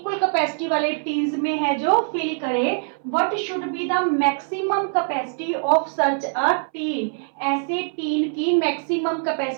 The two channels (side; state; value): left; silent; 61 dB below the other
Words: कैपेसिटी वाले टीन्स में है जो फिल करे। What should be the maximum capacity of such a tin? ऐसे टीन की मैक्सिमम